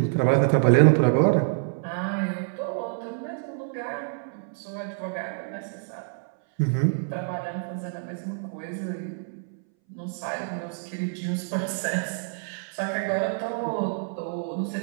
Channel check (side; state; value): left; silent; 60 dB below the other